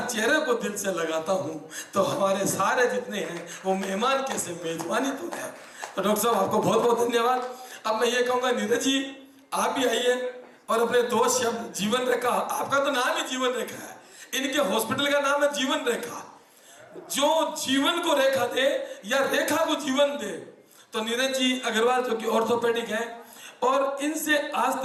चेहरे को दिल से लगाता हूँ। तो हमारे सारे जितने हैं वो मेहमान कैसे मेजबानी तो है। तो डॉक्टर साहब आपको बहुत बहुत धन्यवाद। अब मैं ये कहूँगा नीरज जी आप भी आइए और अपने 2 शब्द जीवन रेखा, आपका तो नाम ही जीवन रेखा है, इनके हॉस्पिटल का नाम है जीवन रेखा। जो जीवन को रेखा दे या रेखा को जीवन दे। तो नीरज जी अग्रवाल जो कि ऑर्थोपेडिक हैं, और इनसे आज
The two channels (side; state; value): both; identical; correlation 1.00